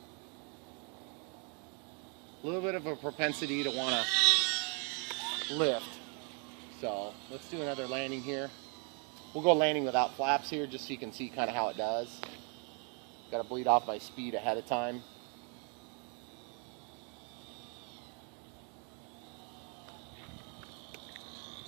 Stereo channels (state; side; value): quieter; left; 38.4 dB